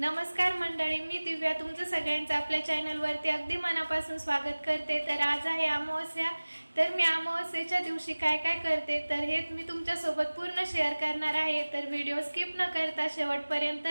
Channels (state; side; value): inverted; both; correlation -1.00